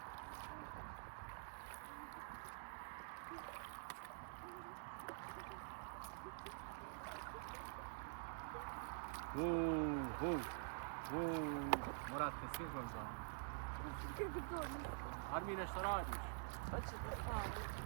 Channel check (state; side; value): silent; left; digital silence